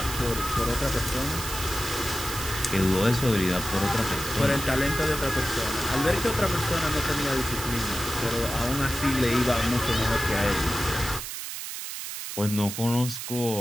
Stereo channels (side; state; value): right; noise; hiss, 7 dB below the sound